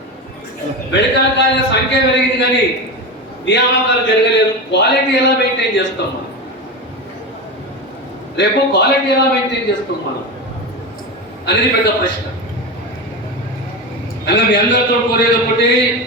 మెడికల్ కాలేజీల సంఖ్య పెరిగింది కానీ నియామకాలు జరగలేదు. క్వాలిటీ ఎలా మెయింటైన్ చేస్తాం మనం? రేపు క్వాలిటీ ఎలా మెయింటైన్ చేస్తాం మనం అనేది పెద్ద ప్రశ్న. అలా మీ అందరితో కోరేది ఒకటి,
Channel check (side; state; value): both; normal; correlation 0.20